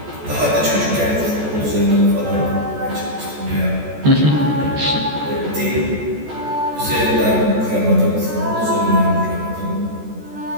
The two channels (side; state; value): left; late; 14 ms